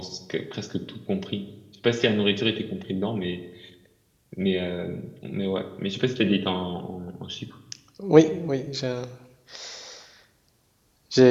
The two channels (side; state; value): both; identical; correlation 1.00